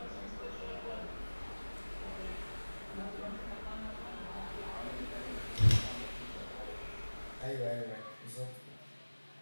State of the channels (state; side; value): inverted; both; correlation -1.00